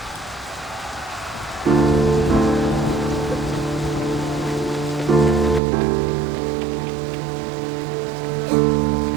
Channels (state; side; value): drops out; left; at 5.6 s